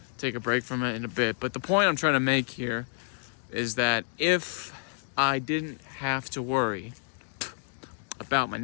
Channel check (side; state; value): right; silent; digital silence